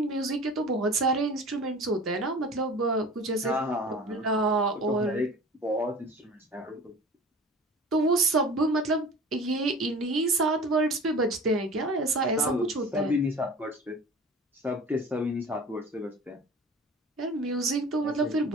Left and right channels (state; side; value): normal; both; correlation 0.40